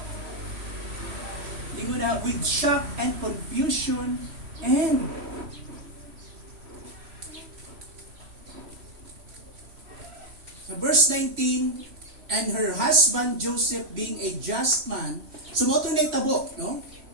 With shock and confusion and verse 19, and her husband Joseph being a just man, sumoto na itabo, no?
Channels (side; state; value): left; late; 3.1 ms